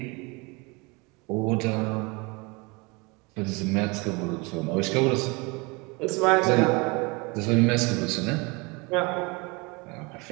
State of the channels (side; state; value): left; quieter; 27.3 dB